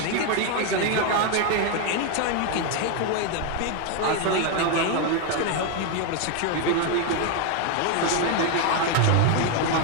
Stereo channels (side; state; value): both; different; correlation 0.01